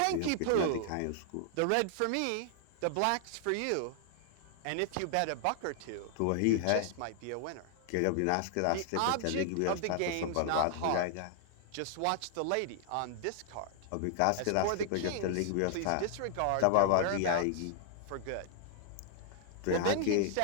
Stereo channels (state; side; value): different; both; correlation -0.01